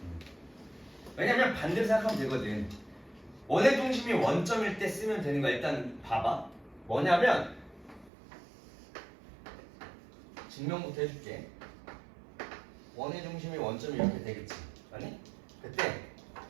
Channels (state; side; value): drops out; left; at 8.1 s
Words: 왜냐면 반대로 생각하면 되거든. 원의 중심이 원점일 때 쓰면 되는 거야. 일단 봐봐. 뭐냐면 증명부터 해줄게. 원의 중심이 원점이 이렇게 되겠지. 아니? 그때